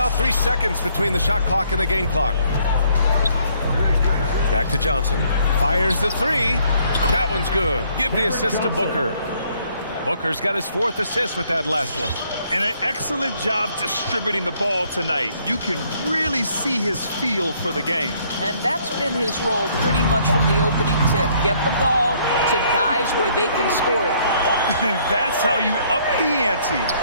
3 seconds between the shot clock and the game clock. Back to Johnson. Fires the 3. That one's good. Give the assist to Booker. Booker's got his 4th assist with that last one. And an excellent job distributing the ball tonight. You can really see his feel for the game. And that's been his role pretty much from the opening tip. Get the ball to guys where they can score it. That's how you up the ante.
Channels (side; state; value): both; inverted; correlation -0.65